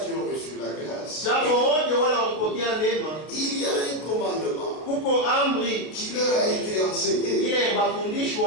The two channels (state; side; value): late; right; 32 ms